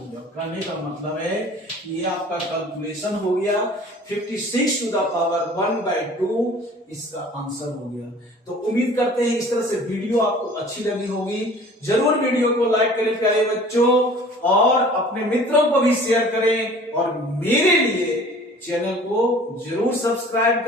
कहने का मतलब है कि ये आपका कैलकुलेशन हो गया, 56 टू द पावर 1/2 इसका आंसर हो गया। तो उम्मीद करते हैं इस तरह से वीडियो आपको अच्छी लगी होगी। जरूर वीडियो को लाइक करें प्यारे बच्चों, और अपने मित्रों को भी शेयर करें, और मेरे लिए चैनल को जरूर सब्सक्राइब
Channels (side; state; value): both; normal; correlation 0.47